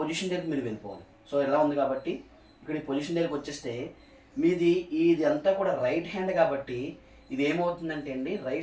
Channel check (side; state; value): both; identical; correlation 1.00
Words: దగ్గరికి మీరు వెళ్ళిపోవాలి. సో ఇలా ఉంది కాబట్టి ఇక్కడ ఈ పొజిషన్ దగ్గరికి వచ్చేస్తే మీది ఇది అంతా కూడా రైట్ హ్యాండ్ కాబట్టి ఇది ఏమవుతుందంటే అండి